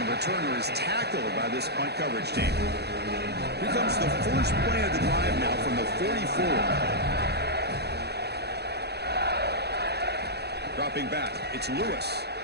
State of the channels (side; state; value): left; late; 0.48 ms